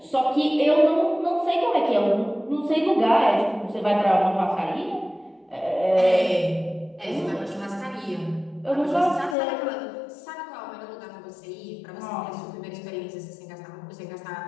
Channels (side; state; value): right; drops out; at 9.3 s